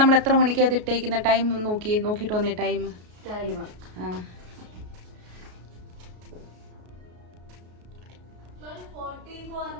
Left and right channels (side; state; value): left; late; 33 ms